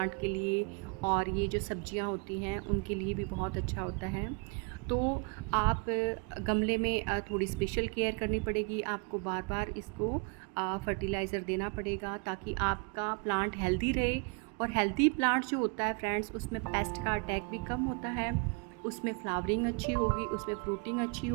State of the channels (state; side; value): quieter; left; 34.4 dB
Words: के लिए, और ये जो सब्जियां होती हैं उनके लिए भी बहुत अच्छा होता है। तो आप गमले में थोड़ी स्पेशल केयर करनी पड़ेगी, आपको बार बार इसको फर्टिलाइज़र देना पड़ेगा ताकि आपका प्लांट हेल्दी रहे। और हेल्दी प्लांट जो होता है फ्रेंड्स, उसमें पेस्ट का अटैक भी कम होता है, उसमें फ्लावरिंग अच्छी होगी, उसमें फ्रूटिंग अच्छी